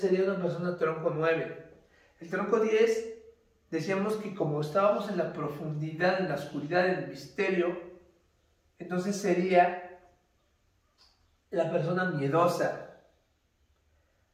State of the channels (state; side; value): identical; both; correlation 1.00